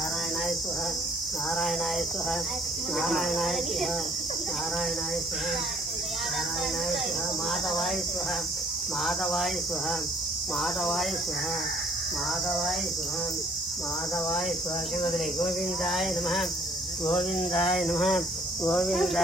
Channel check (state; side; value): normal; both; correlation 0.60